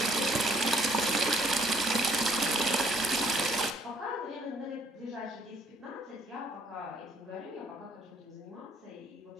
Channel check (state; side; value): normal; both; correlation 0.62